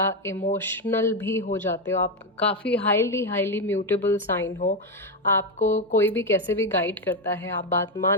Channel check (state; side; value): normal; both; correlation 0.08